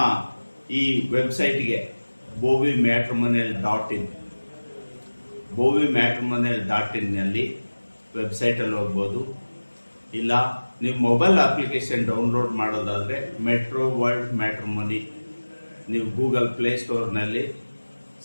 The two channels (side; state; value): both; inverted; correlation -1.00